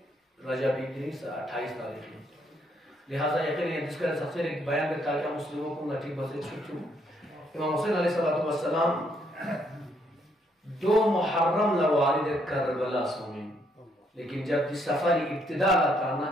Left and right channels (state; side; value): normal; both; correlation 0.72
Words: رجبی دن سے 28 تاریخ میں. لہذا یقین جس کا سفر ایک بیان کرتا ہے مسلموں کو نٹی بسے چھوٹوں. امام حسین علیہ السلام 2 محرم لوارد کربلا سومین، لیکن جب جس سفر ابتدا لاتا نا،